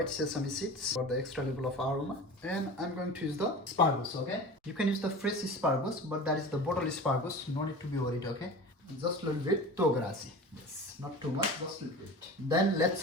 sesame seeds for the extra level of aroma. And I'm going to use the asparagus, okay? You can use the fresh asparagus, but that is the bottle asparagus. No need to be worried, okay? Just a little bit togarashi. Yes, not too much, just a little bit. Then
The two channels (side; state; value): both; normal; correlation 0.35